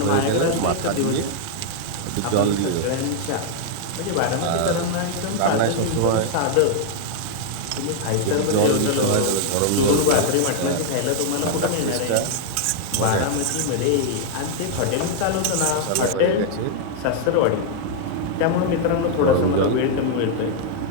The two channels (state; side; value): different; both; correlation 0.00